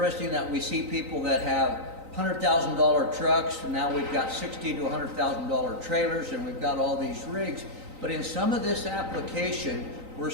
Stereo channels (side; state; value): left; late; 3.9 ms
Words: that we see people that have $100,000 trucks, and now we've got $60,000 to $100,000 trailers, and we've got all these rigs. But in some of this application, we're